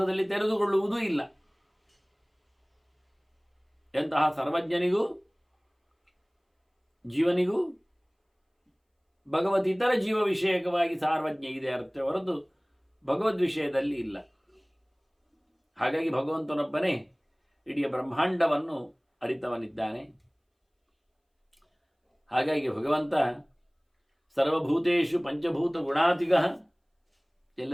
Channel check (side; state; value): both; identical; correlation 1.00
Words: ತೆರೆದುಕೊಳ್ಳುವುದೂ ಇಲ್ಲ. ಎಂತಹ ಸರ್ವಜ್ಞನಿಗೂ ಜೀವನಿಗೂ ಭಗವತಿತರ ಜೀವ ವಿಷಯಕವಾಗಿ ಸಾರ್ವಜ್ಞ ಇದೆ ಅರ್ಥ ಹೊರತು ಭಗವದ್ ವಿಷಯದಲ್ಲಿ ಇಲ್ಲ. ಹಾಗಾಗಿ ಭಗವಂತನೊಬ್ಬನೇ ಇಡೀ ಬ್ರಹ್ಮಾಂಡವನ್ನು ಅರಿತವನಿದ್ದಾನೆ. ಹಾಗಾಗಿ ಭಗವಂತ ಸರ್ವಭೂತೇಷು ಪಂಚಭೂತ ಗುಣಾತಿಗ,